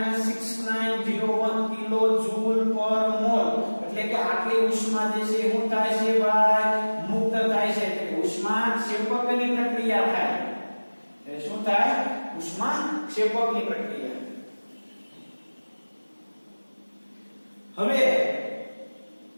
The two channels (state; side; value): inverted; both; correlation -1.00